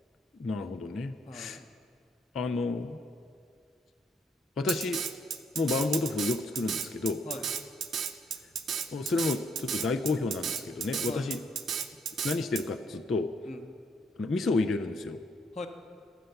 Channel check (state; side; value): normal; both; correlation 0.70